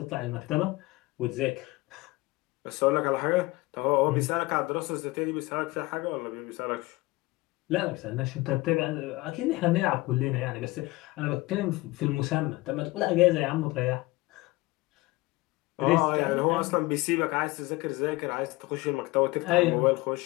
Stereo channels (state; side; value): quieter; right; 21.3 dB